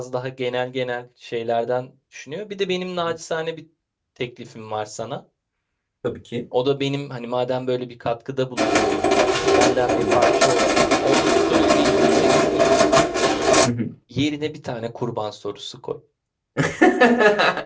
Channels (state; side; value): identical; both; correlation 1.00